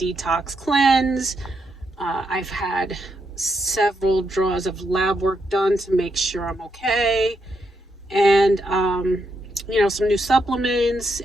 cleanse. I've had several draws of lab work done to make sure I'm okay, and some new supplements,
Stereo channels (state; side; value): normal; both; correlation 0.81